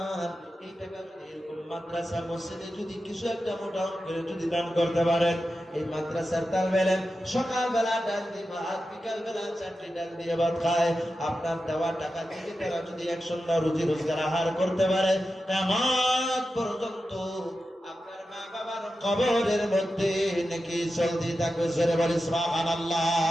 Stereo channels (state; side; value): normal; both; correlation 0.91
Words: এই টাকা যদি এরকম মাদ্রাসা মসজিদে যদি কিছু একটা মোটা অঙ্কের যদি দান করতে পারেন, এই মাদ্রাসার তালবে ইলম সকালবেলা ডাল দিয়ে ভাত, বিকালবেলা 4টি ডাল দিয়ে ভাত খায়। আপনার দেওয়া টাকা থেকে তারা যদি 100 রুজি রোজগার আহার করতে পারে, কিয়ামত পর্যন্ত আপনার মা বাবার কবরের মধ্যে নাকি চলতে থাকবে। জোরে বলি